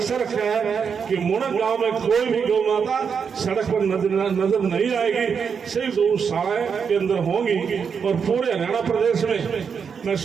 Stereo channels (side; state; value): left; quieter; 6.5 dB